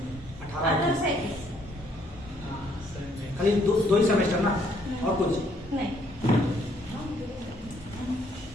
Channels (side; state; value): both; normal; correlation 0.67